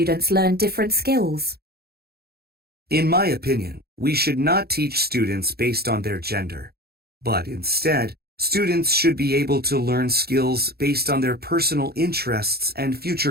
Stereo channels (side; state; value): left; late; 0.46 ms